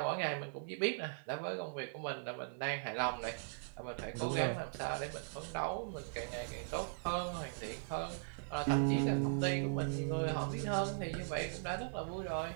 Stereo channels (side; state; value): left; silent; 52 dB below the other